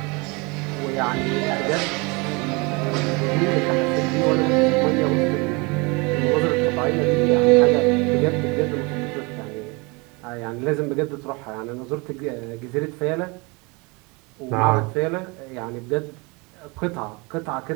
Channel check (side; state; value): left; quieter; 28.0 dB